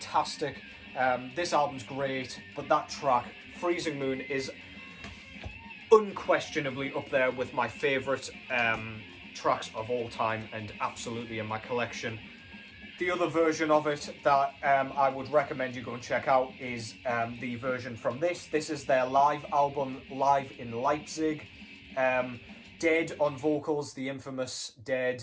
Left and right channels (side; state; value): both; identical; correlation 1.00